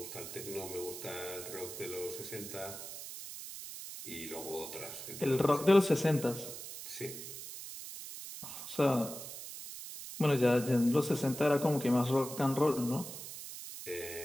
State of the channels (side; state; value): right; noise; hiss, 10 dB below the sound